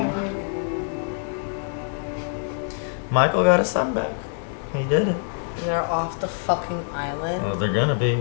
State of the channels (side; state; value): right; silent; 62 dB below the other